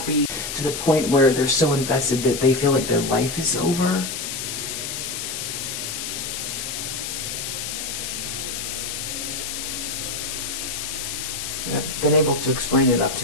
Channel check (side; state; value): left; noise; hiss, 5 dB below the sound